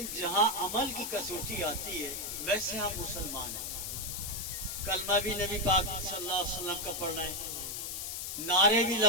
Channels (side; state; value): left; noise; hiss, 4 dB below the sound